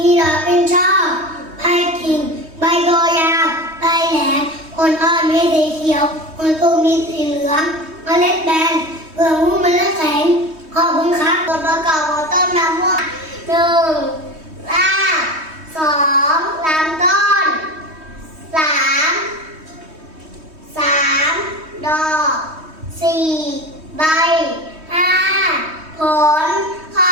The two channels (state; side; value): late; left; 3.2 ms